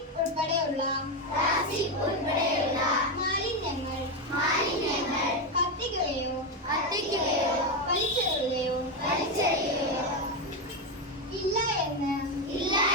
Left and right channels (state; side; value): normal; both; correlation 0.10